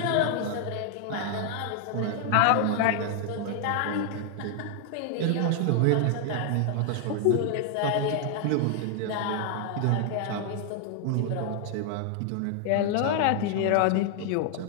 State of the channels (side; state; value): both; different; correlation 0.00